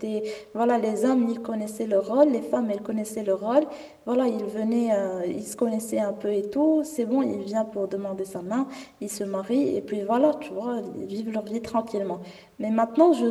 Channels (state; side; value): identical; both; correlation 1.00